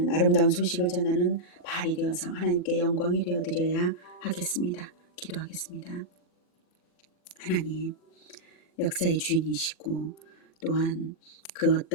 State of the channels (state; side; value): late; right; 39 ms